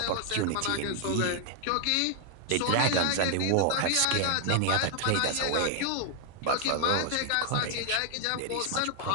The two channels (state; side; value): different; both; correlation 0.00